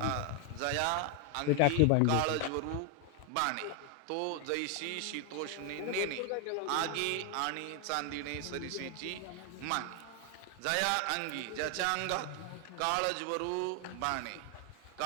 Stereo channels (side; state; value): both; different; correlation 0.00